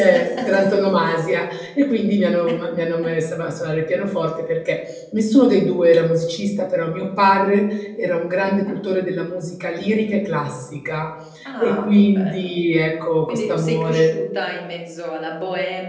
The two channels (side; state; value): both; identical; correlation 1.00